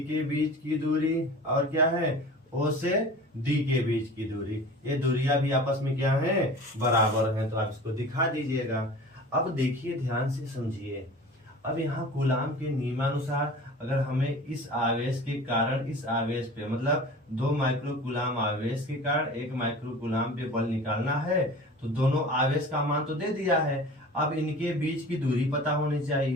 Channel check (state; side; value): normal; both; correlation 0.40